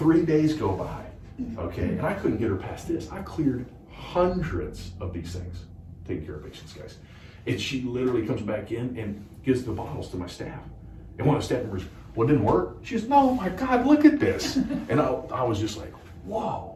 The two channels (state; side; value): identical; both; correlation 1.00